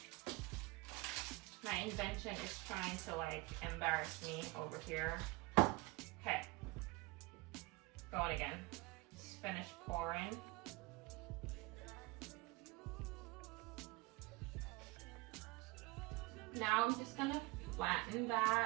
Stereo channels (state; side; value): quieter; left; 22.9 dB